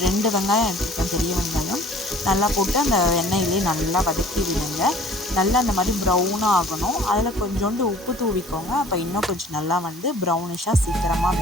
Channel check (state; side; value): normal; both; correlation 0.50